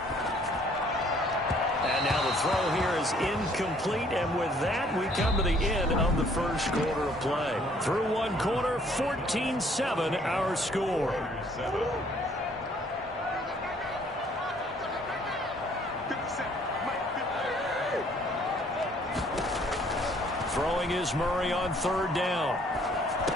And now the throw here is incomplete, and with that, we come to the end of the first quarter of play. Through one quarter, 14-7 our score. Throwing is Murray on 3rd down.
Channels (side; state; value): both; normal; correlation 0.61